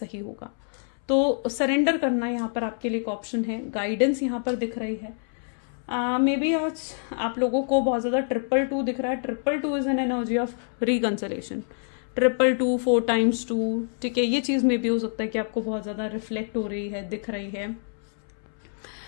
होगा। तो सरेंडर करना यहाँ पर आपके लिए एक ऑप्शन है, गाइडेंस यहाँ पर दिख रही है। मे बी आज आप लोगों को बहुत ज्यादा 222 दिख रहा है। 222 is an energy of reconciliation. 222 4 times 2। ठीक है, ये चीज में भी हो सकता है कि आपको बहुत ज्यादा रिफ्लेक्ट हो रही है, दिख रही है,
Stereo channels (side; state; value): right; silent; 61 dB below the other